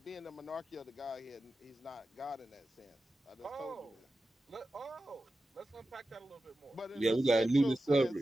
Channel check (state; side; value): normal; both; correlation 0.93